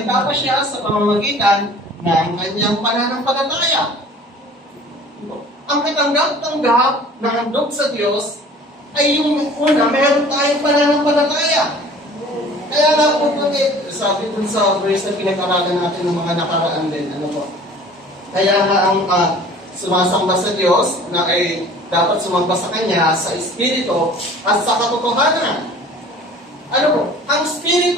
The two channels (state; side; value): normal; both; correlation 0.47